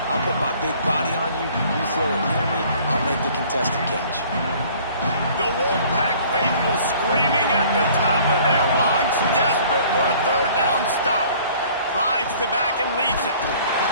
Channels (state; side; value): inverted; both; correlation -0.53